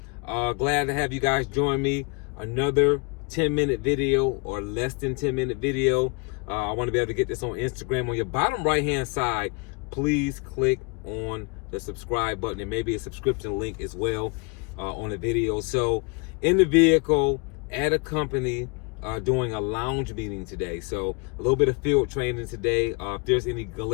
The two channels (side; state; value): right; quieter; 31.8 dB